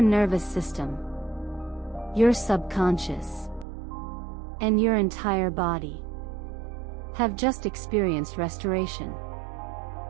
system, your subconscious, and your entire body have just experienced restoration.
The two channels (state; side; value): drops out; left; at 3.7 s